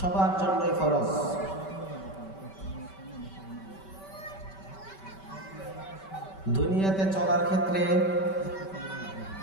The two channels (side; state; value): right; late; 5.2 ms